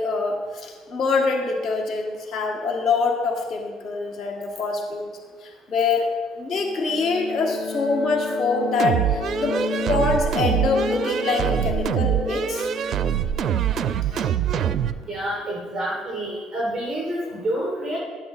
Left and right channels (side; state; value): both; normal; correlation 0.59